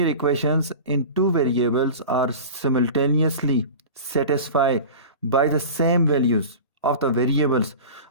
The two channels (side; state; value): both; inverted; correlation -0.34